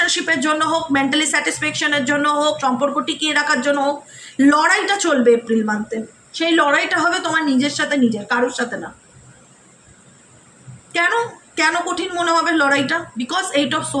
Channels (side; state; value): both; identical; correlation 1.00